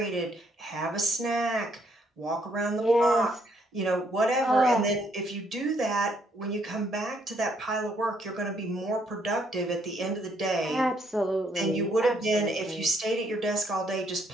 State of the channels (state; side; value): normal; both; correlation 0.70